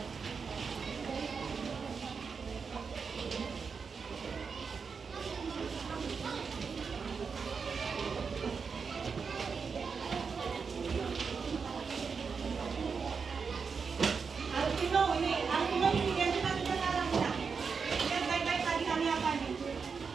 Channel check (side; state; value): left; quieter; 5.5 dB